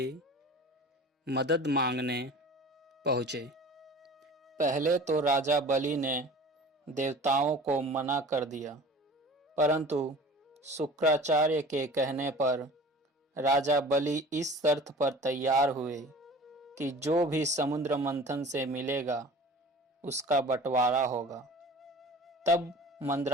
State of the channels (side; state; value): both; normal; correlation 0.42